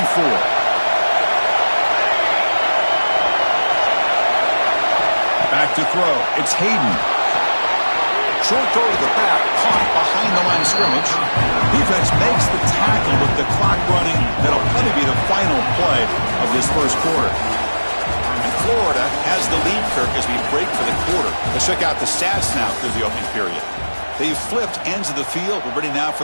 Back to throw. It's Hayden. Short throw to the back, caught behind the line of scrimmage. Defense makes the tackle with the clock running. That'll probably be the final play of this first quarter. And Florida has the lead, Kirk, as we break for the quarter. Let's check out the stats now through the opening period. They've flipped ends of the field. We're ready now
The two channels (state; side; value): inverted; both; correlation -1.00